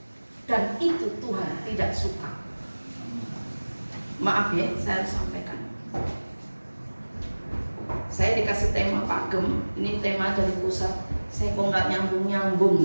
Dan itu Tuhan tidak suka. Maaf ya, saya harus sampaikan. Saya dikasih tema Pak Gem, ini tema dari pusat. Saya kok nggak nyambung-nyambung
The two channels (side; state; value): both; inverted; correlation -1.00